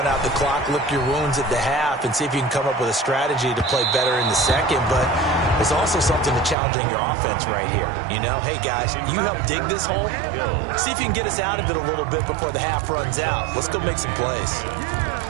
out the clock, lick your wounds at the half, and see if you can come up with a strategy to play better in the second. But there's also something to challenging your offense right here. You know, hey, guys, you help dig this hole. See if you can get us out of it a little bit before the half runs out. Let's go make some plays.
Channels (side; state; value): left; drops out; at 6.6 s